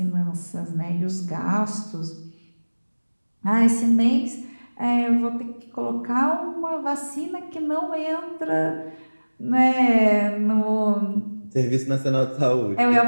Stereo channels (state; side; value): inverted; both; correlation -1.00